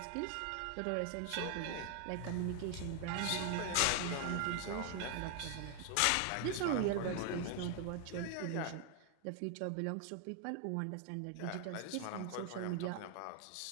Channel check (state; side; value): different; both; correlation 0.00